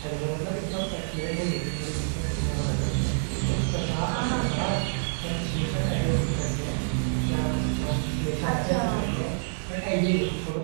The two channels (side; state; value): left; silent; 60 dB below the other